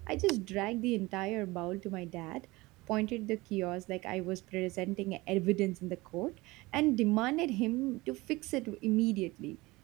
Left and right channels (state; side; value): quieter; left; 21.5 dB